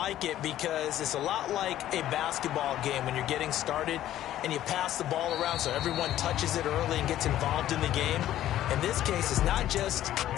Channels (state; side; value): quieter; right; 12.8 dB